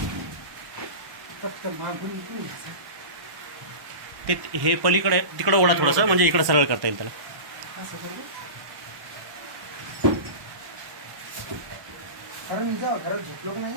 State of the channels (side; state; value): left; late; 1.0 ms